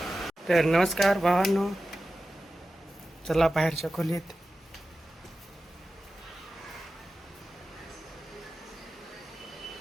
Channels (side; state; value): both; normal; correlation 0.94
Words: तर नमस्कार भावांनो, चला बाहेरच्या खोलीत.